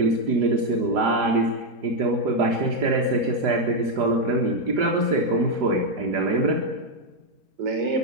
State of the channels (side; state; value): left; late; 5.0 ms